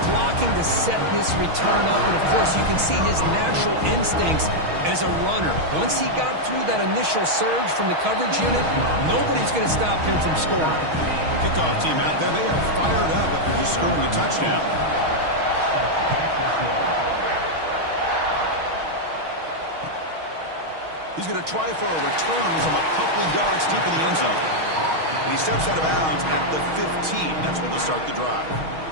blocking to set this return up, and of course you can see his natural instincts as a runner. Once he got through that initial surge from the coverage unit, nobody's going to stop him from scoring. Kickoff team out there, they are fired up after just scoring a touchdown. He's going to try for a return from a couple of yards deep in the end zone. And he steps out of bounds at the 15. That's where they'll start the drive.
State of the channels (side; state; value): left; late; 6.3 ms